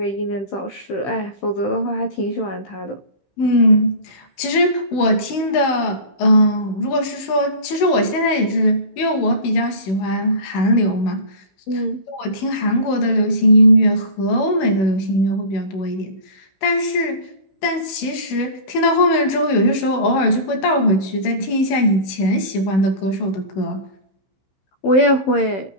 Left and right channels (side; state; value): right; late; 16 ms